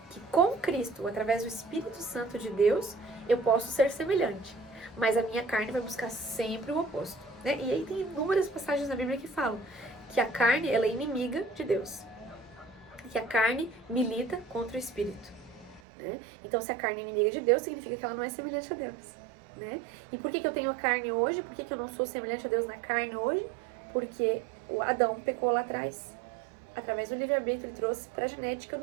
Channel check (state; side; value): drops out; left; at 15.8 s